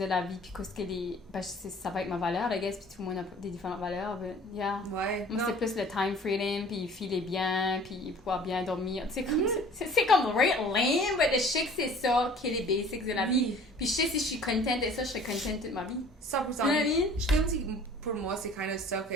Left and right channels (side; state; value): both; normal; correlation 0.49